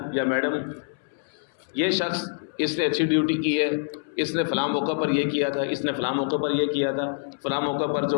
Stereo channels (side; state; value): right; silent; 61 dB below the other